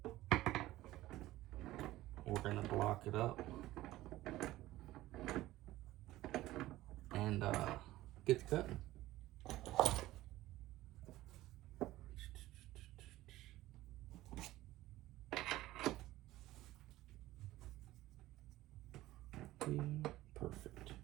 We're gonna block it up and get the cutting. Perfect.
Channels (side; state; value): left; quieter; 16.3 dB